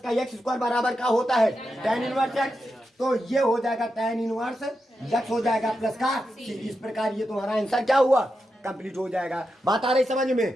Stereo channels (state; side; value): normal; both; correlation 0.87